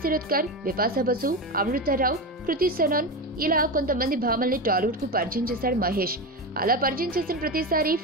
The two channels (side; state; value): both; normal; correlation 0.19